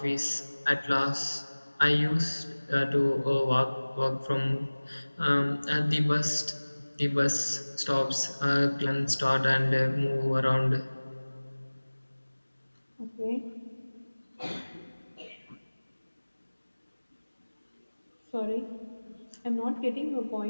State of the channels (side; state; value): both; inverted; correlation -1.00